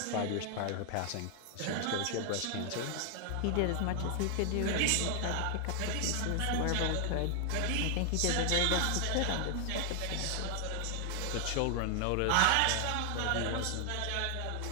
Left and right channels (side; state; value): both; different; correlation 0.00